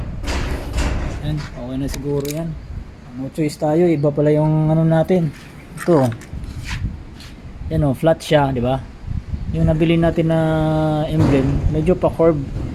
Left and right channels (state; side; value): identical; both; correlation 1.00